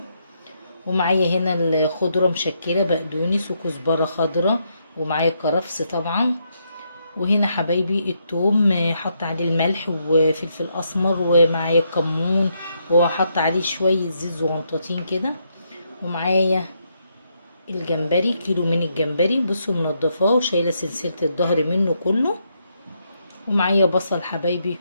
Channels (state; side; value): inverted; both; correlation -0.77